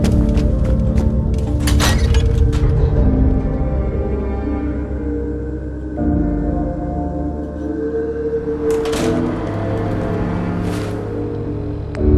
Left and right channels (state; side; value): identical; both; correlation 1.00